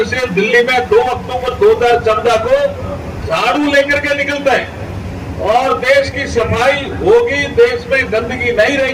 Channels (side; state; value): both; identical; correlation 1.00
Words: से दिल्ली में 2 अक्टूबर 2014 को झाड़ू लेकर के निकलता है और देश की सफाई होगी, देश में गंदगी नहीं